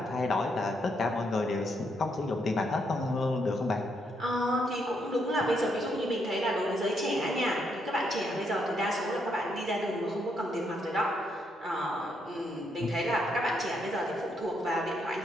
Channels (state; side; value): normal; both; correlation 0.76